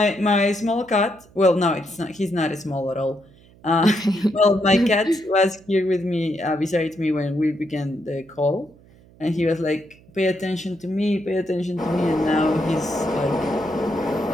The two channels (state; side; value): noise; right; hum, 26 dB below the sound